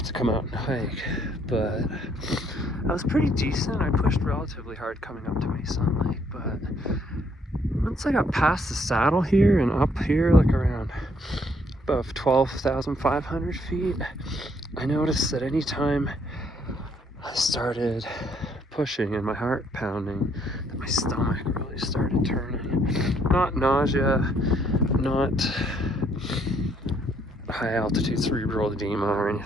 to come out and hike, but I was pretty decent. I pushed relatively hard coming up to Meysan Lake, but once I got past the saddle here and up here, like around above 12,500 feet, I noticed that anytime I started pushing and my heart pounding, that my stomach really started turning. Not nausea, not high altitude cerebral edema or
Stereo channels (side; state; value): both; normal; correlation 0.68